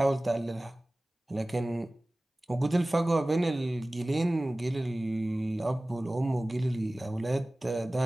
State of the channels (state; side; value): normal; both; correlation 0.98